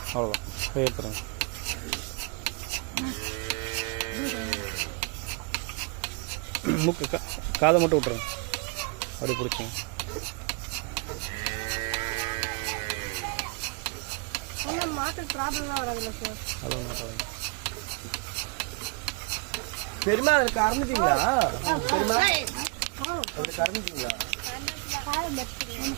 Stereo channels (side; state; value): left; quieter; 30.8 dB